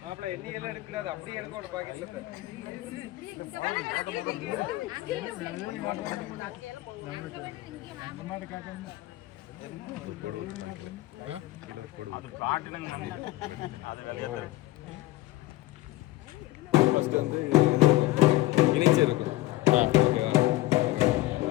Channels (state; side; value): quieter; right; 17.8 dB